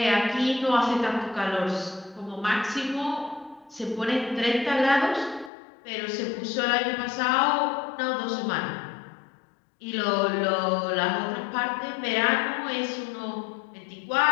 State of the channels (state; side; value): drops out; right; at 5.5 s